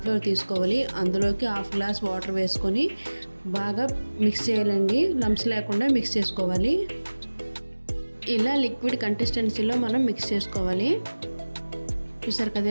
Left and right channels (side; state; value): both; inverted; correlation -1.00